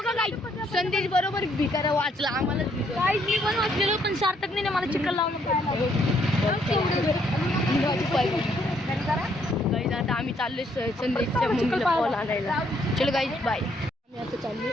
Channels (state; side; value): normal; both; correlation 0.70